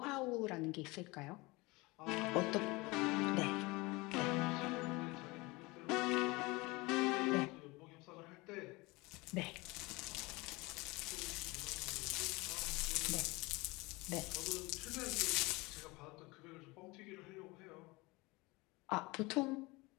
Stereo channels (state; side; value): quieter; right; 23.7 dB